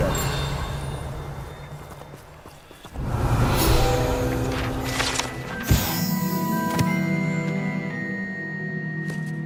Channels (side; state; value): both; identical; correlation 1.00